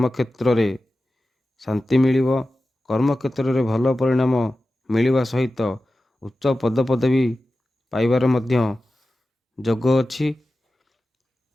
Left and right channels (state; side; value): normal; both; correlation 0.94